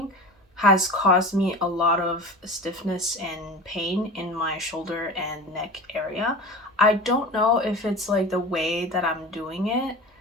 has caused me a lot of stiffness and pain in my shoulder and neck area. I don't know if it's like the way that I'm doing it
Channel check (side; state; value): both; normal; correlation 0.34